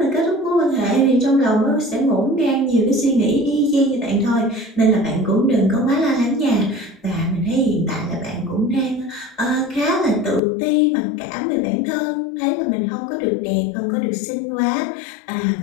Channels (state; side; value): drops out; right; at 10.4 s